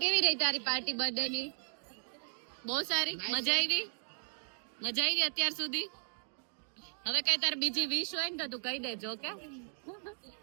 કેવી રહી તારી પાર્ટી બર્થડે ની? બહુ સારી. મજા આવી અત્યાર સુધી? હવે કઈ તાર બીજી વિશ હોય ને તો તું કહી દેજો કે.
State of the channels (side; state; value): left; silent; 54 dB below the other